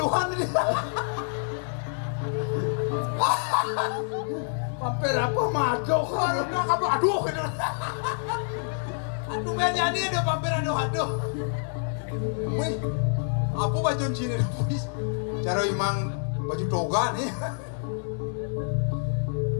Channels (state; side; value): silent; right; 59 dB below the other